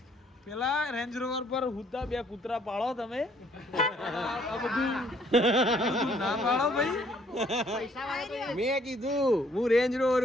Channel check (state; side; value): normal; both; correlation 0.63